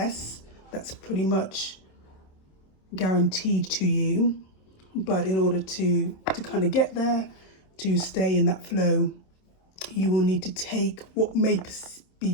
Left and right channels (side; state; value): right; late; 27 ms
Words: that's pretty much guaranteed to you. But in order to kind of get there, to stay in that flow, you will need to take what may